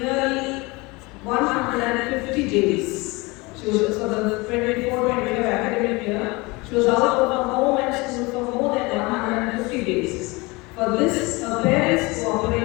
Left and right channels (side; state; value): right; quieter; 24.7 dB